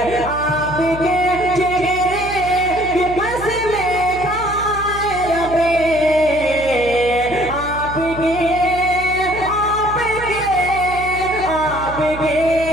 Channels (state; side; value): noise; right; hum, 12 dB below the sound